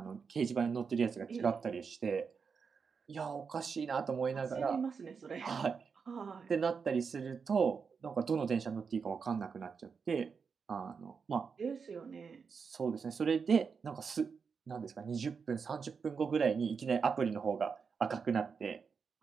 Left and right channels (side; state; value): left; quieter; 5.7 dB